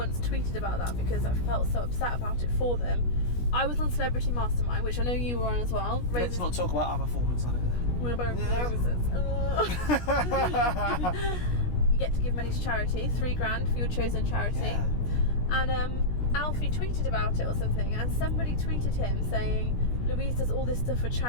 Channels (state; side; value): late; right; 17 ms